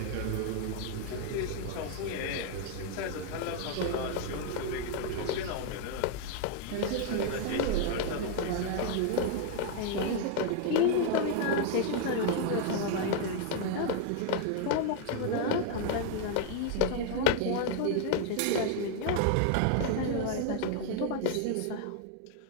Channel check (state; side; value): different; both; correlation 0.00